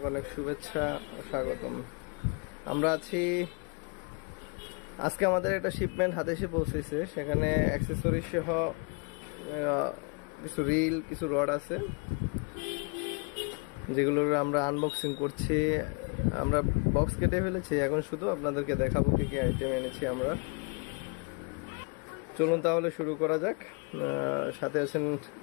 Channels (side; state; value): right; quieter; 34.6 dB